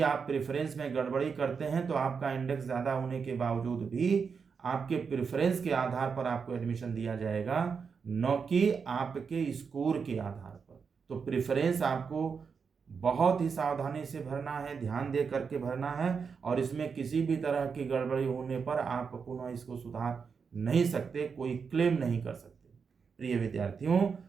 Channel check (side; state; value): left; quieter; 5.8 dB